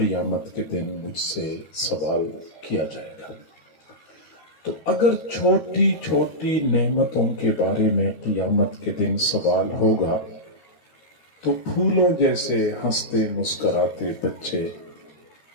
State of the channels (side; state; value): right; late; 13 ms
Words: کے دن مجھ سے سوال کیا جائے گا۔ تو اگر چھوٹی چھوٹی نعمتوں کے بارے میں قیامت کے دن سوال ہوگا تو پھولوں جیسے ہنستے مسکراتے بچے،